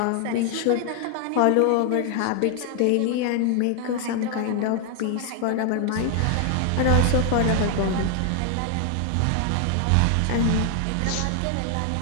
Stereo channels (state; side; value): different; both; correlation 0.00